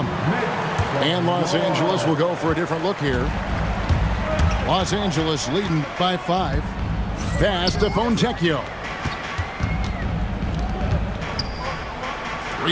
And Los Angeles will go for a different look here. Los Angeles leading by 5. Pass to Fontecchio.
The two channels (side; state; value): both; identical; correlation 1.00